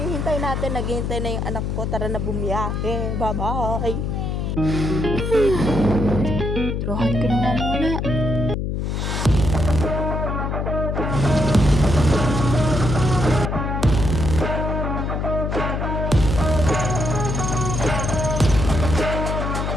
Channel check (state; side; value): noise; left; hum, 1 dB below the sound